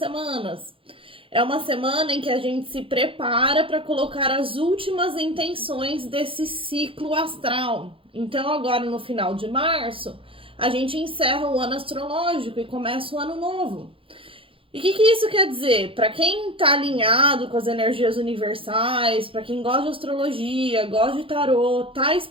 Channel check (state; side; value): late; left; 0.26 ms